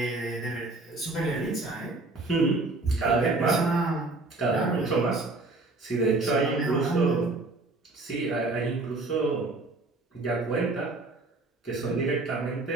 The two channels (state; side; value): quieter; left; 3.2 dB